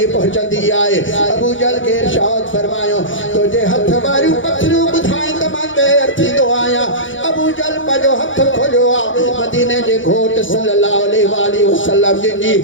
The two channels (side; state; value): right; late; 0.56 ms